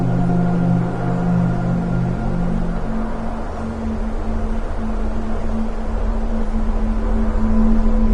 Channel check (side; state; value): both; identical; correlation 1.00